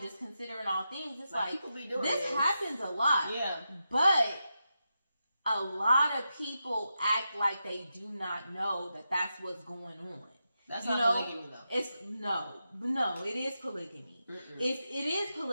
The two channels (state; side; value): inverted; both; correlation -0.88